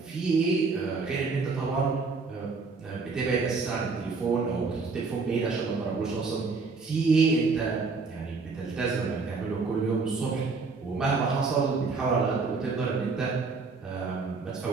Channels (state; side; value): quieter; left; 4.4 dB